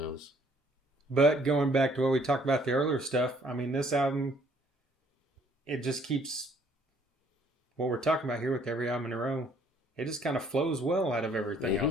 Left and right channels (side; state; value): both; normal; correlation 0.62